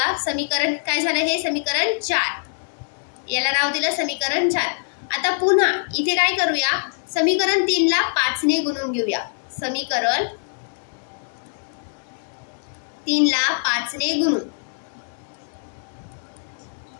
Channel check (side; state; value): right; silent; digital silence